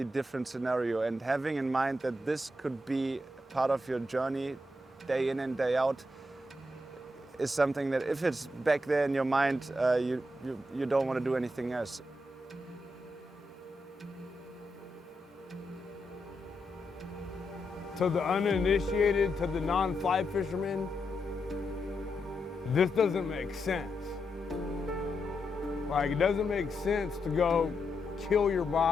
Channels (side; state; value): both; normal; correlation 0.84